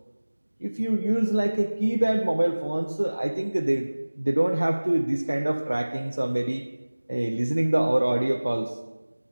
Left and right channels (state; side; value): inverted; both; correlation -1.00